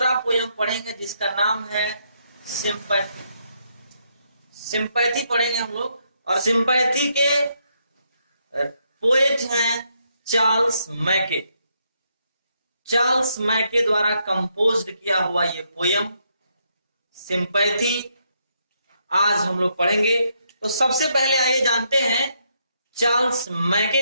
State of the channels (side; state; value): both; inverted; correlation -0.76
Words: पोयम पढ़ेंगे जिसका नाम है सिंपैथी। सिंपैथी पढ़ेंगे हम लोग, और सिंपैथी के पोएट हैं चार्ल्स मैके। चार्ल्स मैके द्वारा कंपोज्ड किया हुआ ये पोयम सिंपैथी आज हम लोग पढ़ेंगे। तो सबसे पहले आइए जानते हैं चार्ल्स मैके